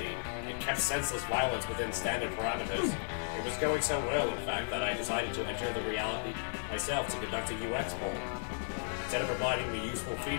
It kept senseless violence within standard parameters. It was going so well, in fact, that I decided to enter the reality myself to conduct a UX poll. Instead of providing me useful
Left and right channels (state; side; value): silent; right; digital silence